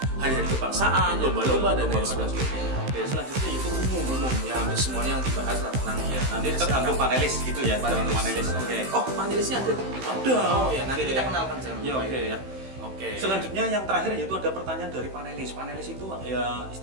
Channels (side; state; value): left; late; 15 ms